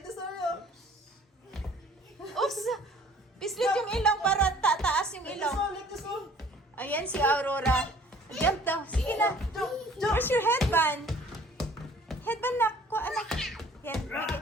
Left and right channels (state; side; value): normal; both; correlation 0.53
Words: Oops! Pislit yung ilong para tataas yung ilong. Ayan si Aurora. Jump daw. Sige na. Where's your headband? Headband na. Kuha anak. Yan.